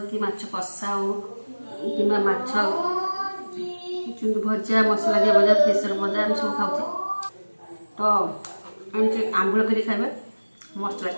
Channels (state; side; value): inverted; both; correlation -1.00